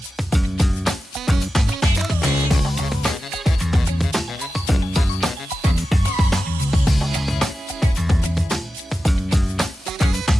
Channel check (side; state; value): both; normal; correlation 0.93